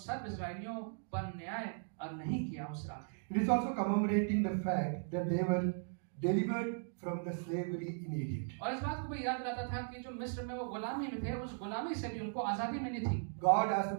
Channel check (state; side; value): silent; left; digital silence